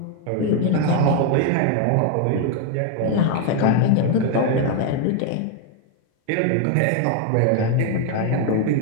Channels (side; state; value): both; different; correlation 0.01